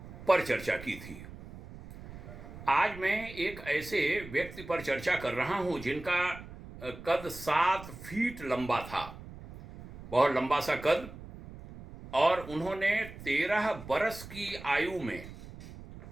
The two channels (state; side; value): noise; right; rumble, 15 dB below the sound